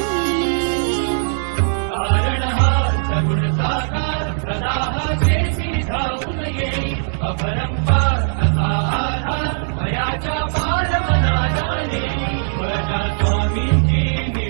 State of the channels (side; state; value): left; silent; digital silence